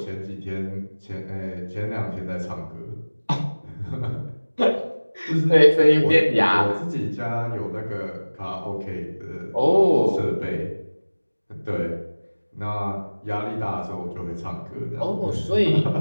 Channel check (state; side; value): inverted; both; correlation -1.00